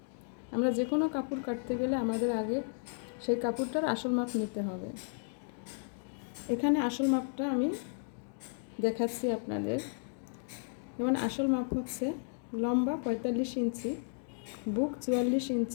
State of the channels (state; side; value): silent; right; digital silence